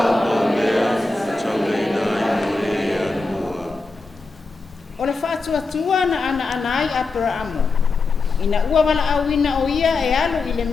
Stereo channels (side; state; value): right; quieter; 3.8 dB